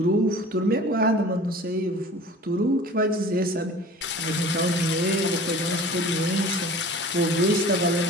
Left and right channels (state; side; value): normal; both; correlation 0.42